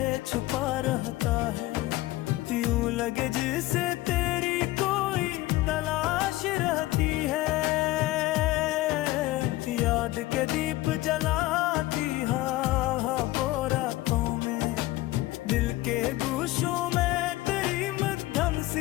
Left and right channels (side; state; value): right; quieter; 17.9 dB